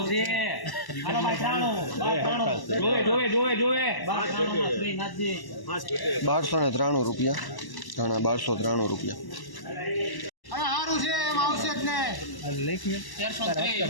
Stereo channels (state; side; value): late; right; 1.0 ms